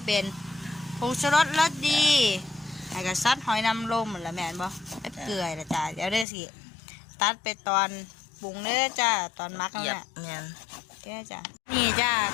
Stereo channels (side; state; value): right; drops out; at 6.2 s